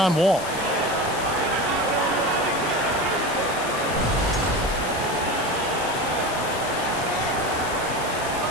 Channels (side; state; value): left; noise; hiss, 11 dB below the sound